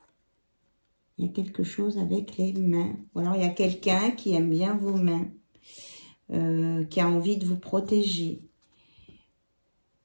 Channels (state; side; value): inverted; both; correlation -1.00